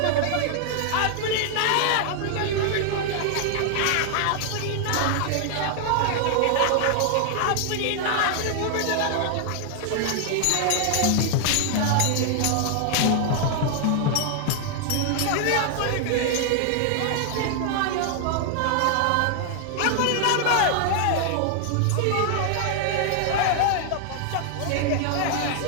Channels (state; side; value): different; both; correlation 0.00